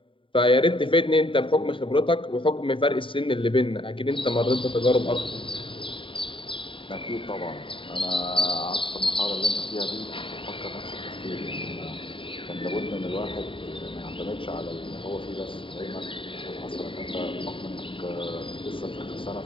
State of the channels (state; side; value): late; right; 0.25 ms